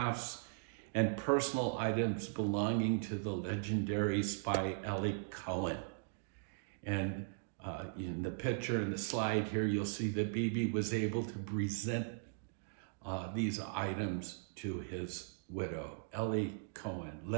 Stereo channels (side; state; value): left; silent; digital silence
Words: and personal items belonging to the legendary spy Eli Cohen. And in the picture in the slide here, you'll see that Bibi was able to present these items to his widow, Eli Cohen,